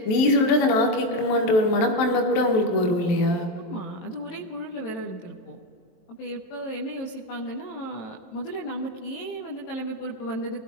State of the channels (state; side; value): late; right; 23 ms